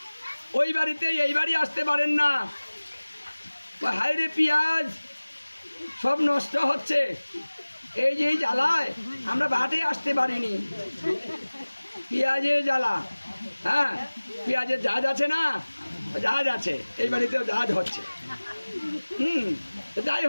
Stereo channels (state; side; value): inverted; both; correlation -1.00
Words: ওই বাড়িতে এই বাড়ি আসতে পারেন না। হায়রে পেঁয়াজ সব নষ্ট হচ্ছে, এই যে জ্বালায় আমরা বাটে আসতে পারিনি। পেঁয়াজের জ্বালা, হ্যাঁ, পেঁয়াজের জাহাজ আছে না? জাহাজ আছে, এই বাড়িতেও জাহাজ হচ্ছে। যাই